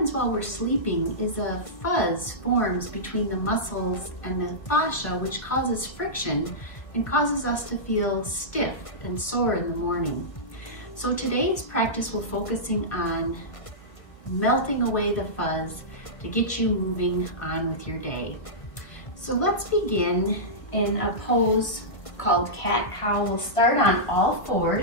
while we're sleeping is a fuzz forms between the muscles and the fascia, which causes friction and causes us to feel stiff and sore in the morning. So today's practice will focusing on melting away the fuzz to get you moving on with your day. So let's begin in a pose called cat-cow. We'll start on all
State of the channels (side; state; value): right; late; 1.4 ms